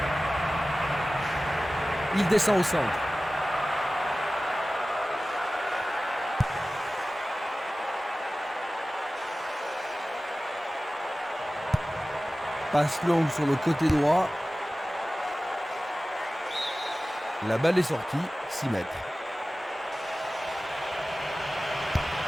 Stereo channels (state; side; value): normal; both; correlation 0.96